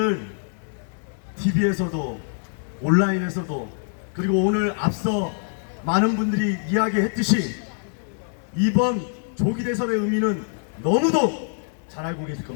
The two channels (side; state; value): right; silent; digital silence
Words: TV에서도 온라인에서도 그리고 오늘 앞서 많은 분들이 이야기했듯이 이번 조기 대선의 의미는 너무도 잘 알고 계실